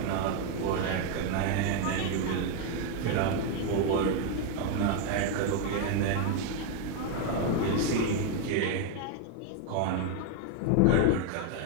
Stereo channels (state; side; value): different; both; correlation 0.01